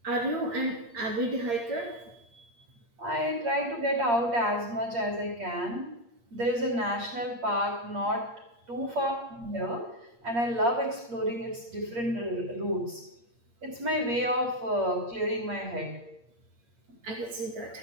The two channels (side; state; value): left; late; 8.6 ms